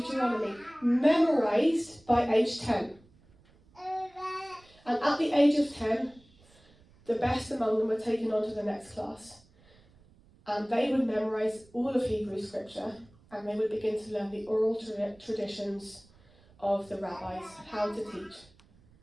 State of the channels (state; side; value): noise; right; rumble, 29 dB below the sound